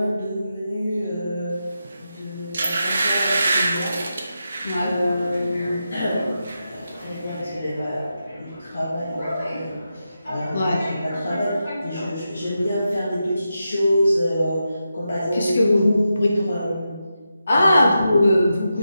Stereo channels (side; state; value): both; inverted; correlation -0.88